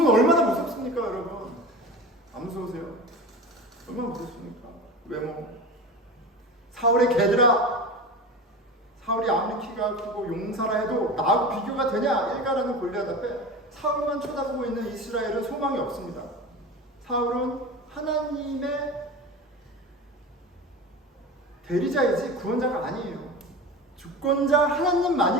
얼마나 무섭습니까, 여러분? 안 무서우세요? 얼마나 무섭습니까? 외모. 사울의 개들아, 사울이 아무리 키가 크고 용사라 해도 나하고 비교가 되냐? 일가라는 골리앗 앞에 사울만 쳐다보고 있는 이스라엘은 소망이 없습니다. 사울은 하나님의 대리자이지 구원자가 아니에요. 주권자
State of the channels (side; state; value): both; normal; correlation 0.31